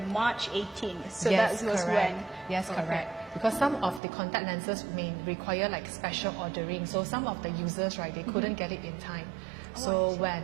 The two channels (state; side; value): drops out; left; at 4.0 s